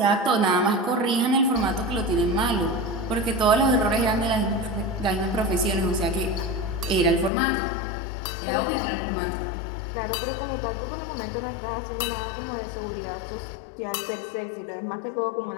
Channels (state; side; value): drops out; right; at 7.3 s